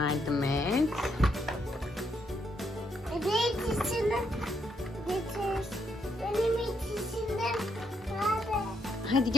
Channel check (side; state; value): both; normal; correlation 0.77